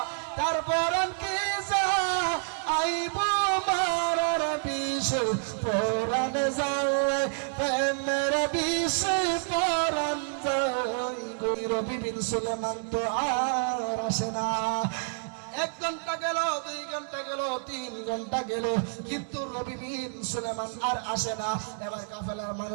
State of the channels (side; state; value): left; silent; digital silence